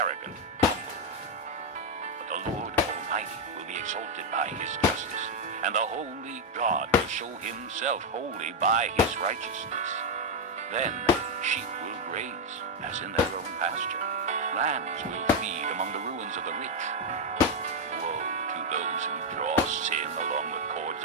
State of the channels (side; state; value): both; normal; correlation 0.03